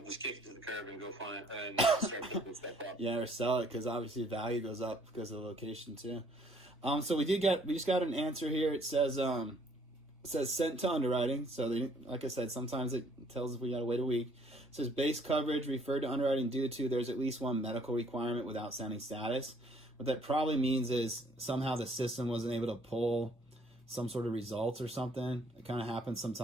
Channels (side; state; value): both; normal; correlation 0.61